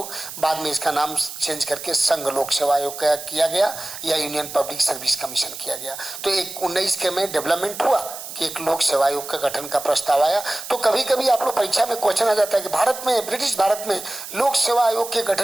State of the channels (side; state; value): right; noise; hiss, 11 dB below the sound